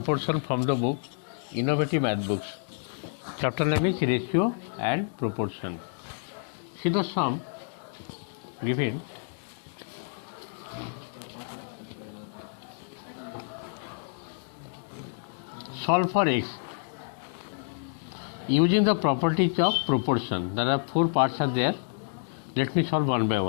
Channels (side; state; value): right; silent; digital silence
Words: from the book Innovative Math Books. Chapter name is Ratio and Proportion. See the sum given. Solve for x using the properties of proportion. There are 4 parts are there. Let me solve one by